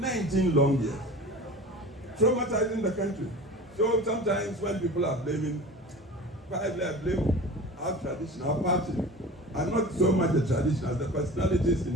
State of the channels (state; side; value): normal; both; correlation 0.37